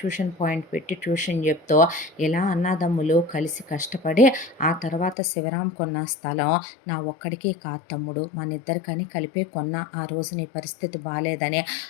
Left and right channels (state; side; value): drops out; right; at 5.2 s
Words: పాయింట్ పెట్టి ట్యూషన్ చెప్తూ ఇలా అన్నదమ్ములు కలిసి కష్టపడి ఆ తర్వాత శివరాం కొన్న స్థలం నా ఒక్కడికి కాదు తమ్ముడు, మన ఇద్దరికని కలిపే కొన్న, ఆ రోజు నీ పరిస్థితి బాలేదని